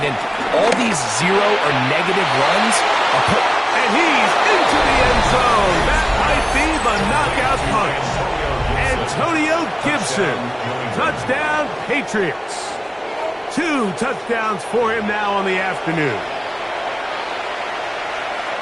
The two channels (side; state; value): both; identical; correlation 1.00